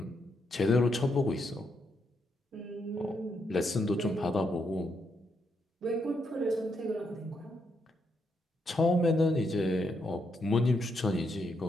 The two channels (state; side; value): normal; both; correlation 0.79